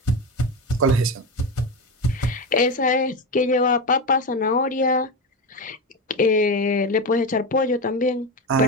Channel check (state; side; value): normal; both; correlation 0.18